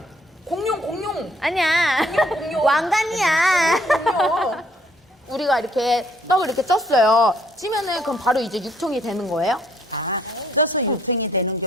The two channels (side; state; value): both; normal; correlation 0.64